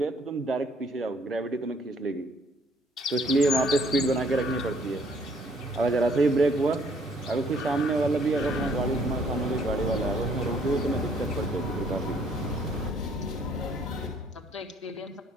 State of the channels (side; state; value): both; normal; correlation 0.63